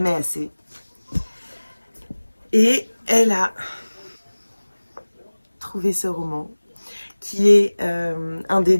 assez. Et elle a trouvé ce roman qui est un des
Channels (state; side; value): inverted; both; correlation -1.00